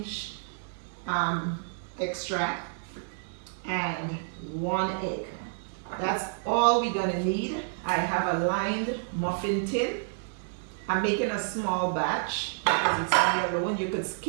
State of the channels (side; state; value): left; silent; 58 dB below the other